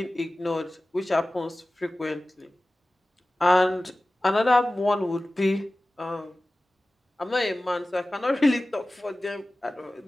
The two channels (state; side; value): normal; both; correlation 0.97